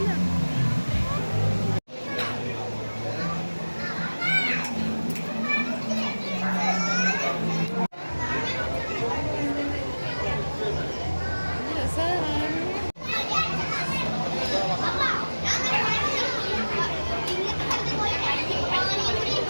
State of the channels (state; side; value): inverted; both; correlation -1.00